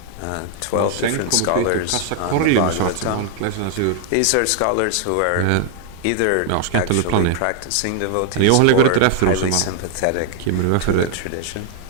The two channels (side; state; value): both; different; correlation 0.00